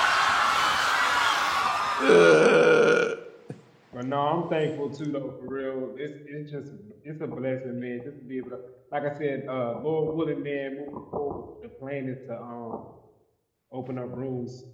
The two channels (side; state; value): both; identical; correlation 1.00